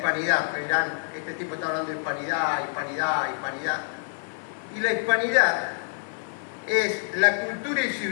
Verán, este tipo está hablando de hispanidad, hispanidad, hispanidad. Y la hispanidad es la cultura y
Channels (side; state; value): right; silent; 60 dB below the other